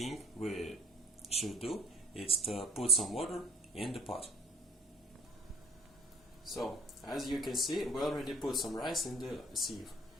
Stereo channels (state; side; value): normal; both; correlation 0.48